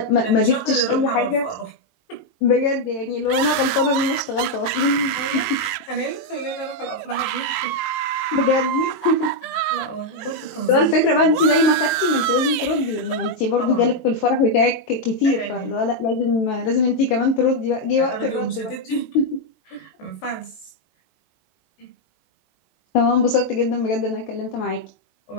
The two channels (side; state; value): right; late; 18 ms